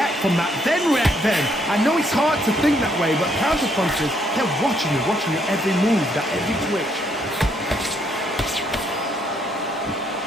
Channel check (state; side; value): normal; both; correlation 0.71